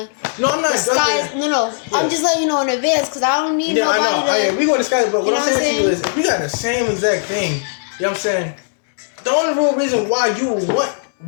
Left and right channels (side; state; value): right; silent; digital silence